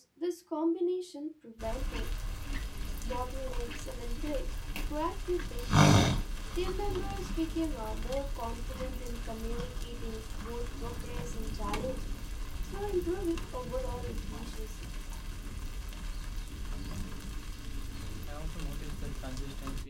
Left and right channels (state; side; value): identical; both; correlation 1.00